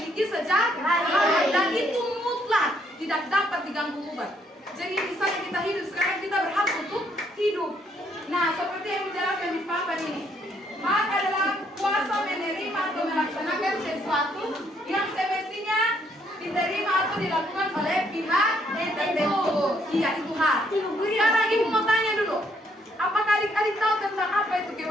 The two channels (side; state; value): both; normal; correlation 0.70